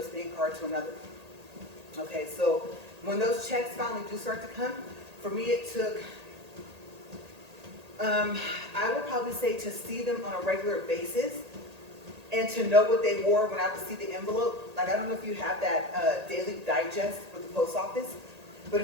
bank card to another. Okay, so when those checks finally do start to come, for me it took, I would probably say, to see them on a regular basis and to know what they wore when I would see the envelope. Like, I don't know if you have that daily digest with the post office, but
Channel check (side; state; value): left; late; 1.8 ms